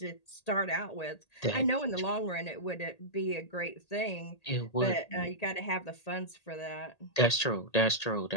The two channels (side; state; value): right; late; 1.8 ms